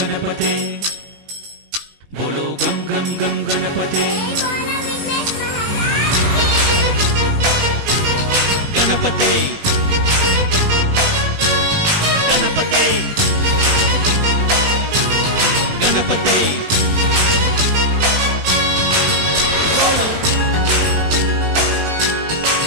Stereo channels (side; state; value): left; late; 19 ms